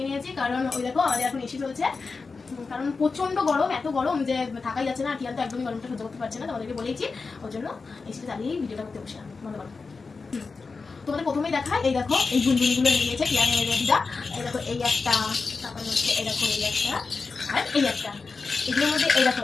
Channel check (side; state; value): right; quieter; 4.4 dB